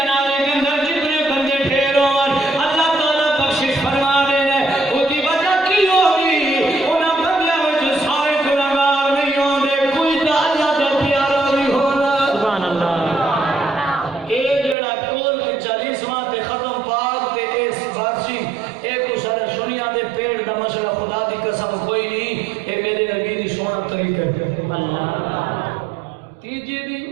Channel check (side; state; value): left; drops out; at 14.8 s